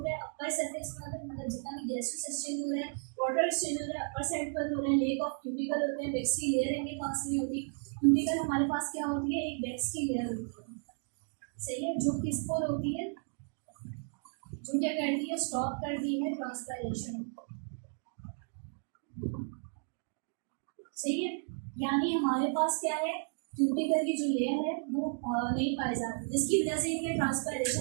है अपर सरफेस में होता है, मतलब जितना भी गैसेस एक्सचेंज हो रहा है, वाटर एक्सचेंज हो रहा है अपर साइड पर हो रहा है। लेक ऑफ क्यूटिकल होते हैं, वेक्सी लेयर इनके पास नहीं होती। क्यूटिकल हमारे पास क्या होती है, एक वेक्सी लेयर होती है, सही है, जो किस पर होती है, जो क्या करती है, स्टॉप करती है ट्रांसपायरेशन। सही है, यानी हमारे पास क्या है, क्यूटिकल की जो लेयर है वो नहीं पाई जाती, जिसकी वजह से इनके ट्रांसपायरेशन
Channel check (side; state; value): left; silent; 55 dB below the other